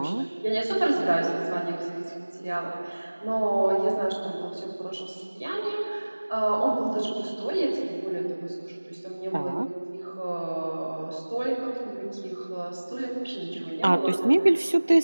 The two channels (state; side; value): inverted; both; correlation -1.00